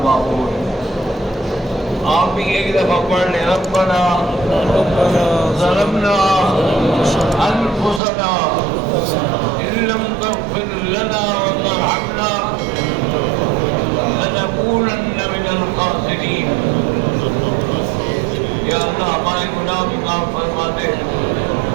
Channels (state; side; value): drops out; left; at 8.0 s